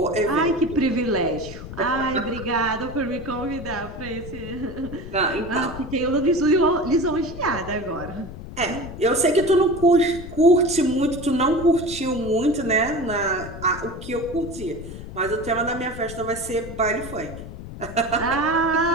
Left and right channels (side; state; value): left; noise; rumble, 12 dB below the sound